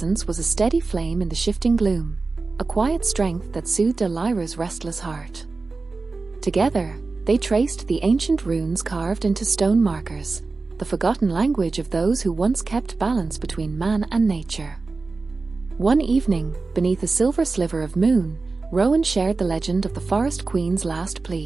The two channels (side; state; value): left; quieter; 3.8 dB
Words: was a steady flame in the shifting gloom, a quiet strength that soothed Elira's restless heart. Together, they traced the ancient runes carved into stone markers, the forgotten language of those who once kept balance between man and nature. One evening, beneath a silver sliver of moon, Rowan shared the legend of the Forest Queen's last